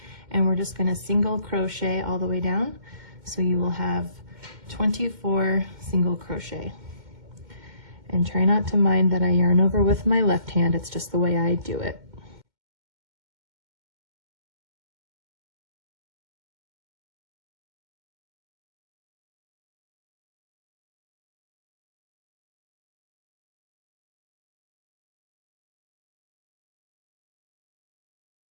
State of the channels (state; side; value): late; left; 2.1 ms